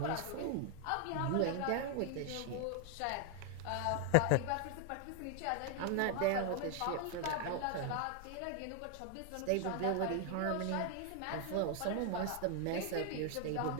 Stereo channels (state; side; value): different; both; correlation 0.01